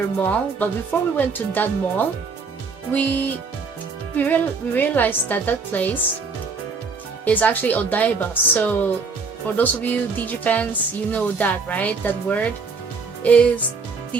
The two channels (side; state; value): left; quieter; 4.7 dB